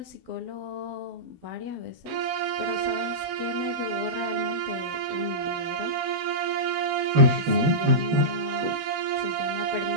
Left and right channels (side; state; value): left; late; 12 ms